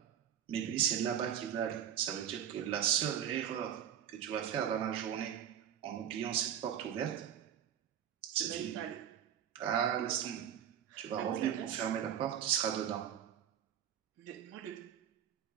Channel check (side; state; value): left; quieter; 9.4 dB